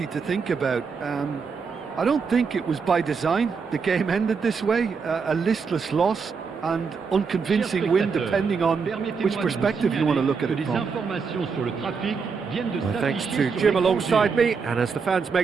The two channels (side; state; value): left; quieter; 5.4 dB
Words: to think about. I don't think it was by design the game ended this way, a listless loss and unconvincing win, depending on which perspective you want to look at it from. Well, thanks to Jim alongside me, and as the fans